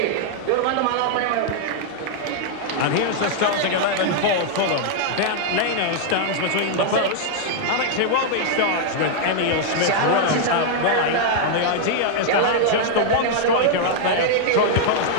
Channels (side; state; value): both; different; correlation -0.01